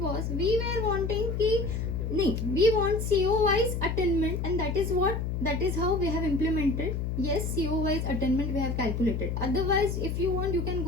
was we were wanting की नाही, we want CO wise attainment and that is how we have implemented. Yes, CO wise attainment we have calculated. Otherwise if you want you can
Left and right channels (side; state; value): left; noise; hum, 2 dB below the sound